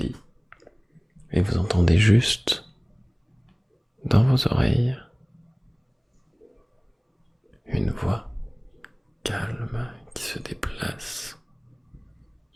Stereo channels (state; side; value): identical; both; correlation 1.00